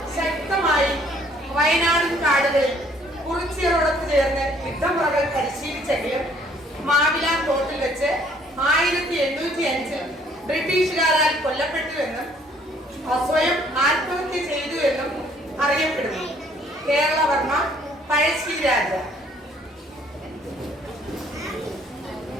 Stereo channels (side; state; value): both; normal; correlation 0.61